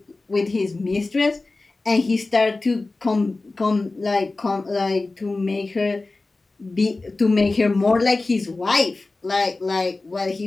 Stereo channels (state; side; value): quieter; right; 3.3 dB